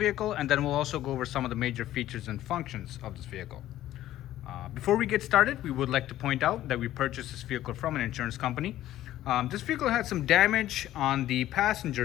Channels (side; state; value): right; quieter; 13.7 dB